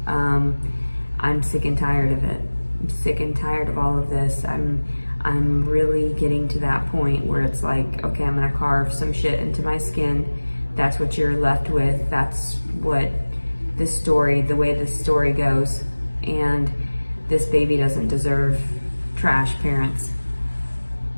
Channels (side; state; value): both; inverted; correlation -1.00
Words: I'm sick and tired of it. I'm sick and tired of all of this. I'm really getting to that point where it's like, okay, I'm gonna carve some shit into my skin. That's what you're left with. That's what this story, the way this story goes. And this baby doesn't deserve trash parents.